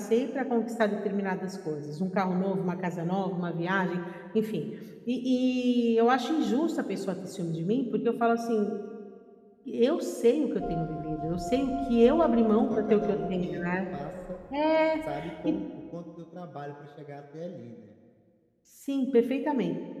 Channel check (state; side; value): identical; both; correlation 1.00